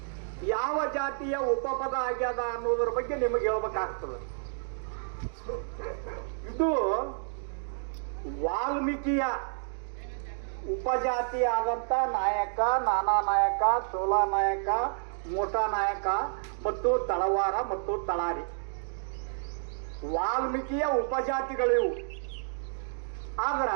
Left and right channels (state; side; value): silent; left; digital silence